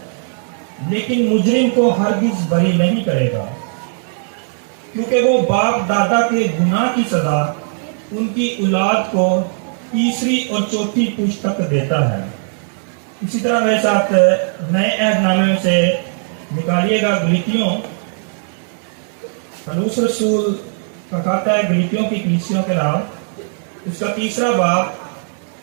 لیکن مجرم کو ہرگز بری نہیں کرے گا، کیونکہ وہ باپ دادا کے گناہ کی سزا ان کی اولاد کو تیسری اور چوتھی پشت تک دیتا ہے. اسی طرح میرے ساتھ نئے عہد نامے میں سے نکالیے گا گلتیوں. پولس رسول کا کہتا ہے گلتیوں کی کلیسیوں کے نام، اس کا 3 باب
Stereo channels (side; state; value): left; silent; digital silence